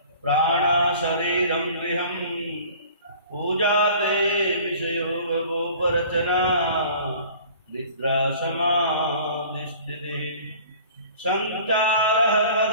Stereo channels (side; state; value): both; inverted; correlation -0.47